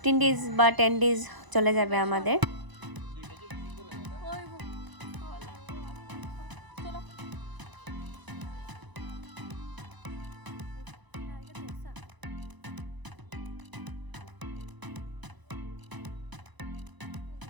days বা 10 days চলে যাবে আমাদের।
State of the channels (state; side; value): late; left; 1.0 ms